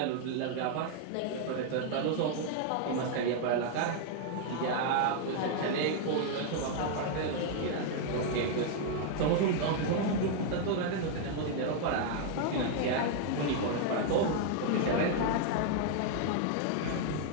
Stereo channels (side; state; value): both; different; correlation 0.00